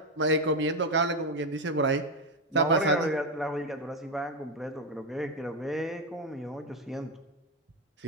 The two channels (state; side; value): normal; both; correlation 0.09